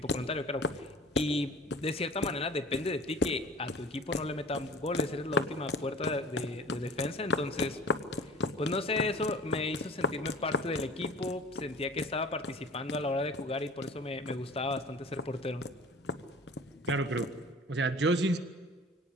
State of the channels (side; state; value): both; normal; correlation 0.42